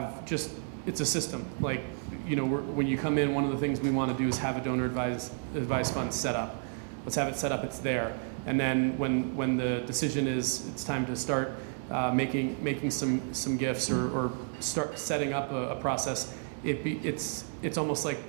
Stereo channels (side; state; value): left; silent; 57 dB below the other